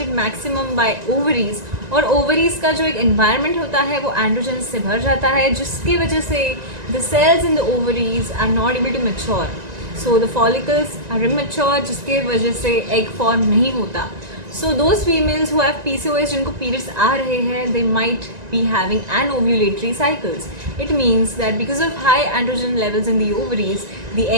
maximum by ovaries, और ovaries का जो एक एनवायरनमेंट होता है वो एंड्रोजन्स से भर जाता है, जिसकी वजह से the cells in the ovaries are not able to mature. So the follicles are immature, जिसके वजह से एग फॉर्म नहीं होता. So those females who have PCOS, जिनको periods आ रहे हैं, they might be having anovulatory cycles. It means that because of high androgen levels in the ovaries, the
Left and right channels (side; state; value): left; late; 1.9 ms